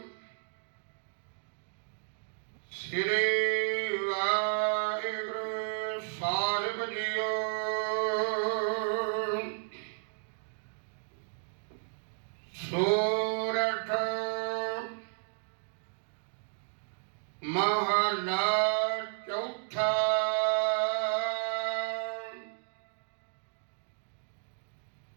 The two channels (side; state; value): left; silent; digital silence